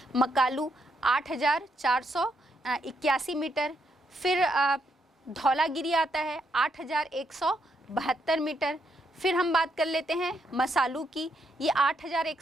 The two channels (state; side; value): normal; both; correlation 0.77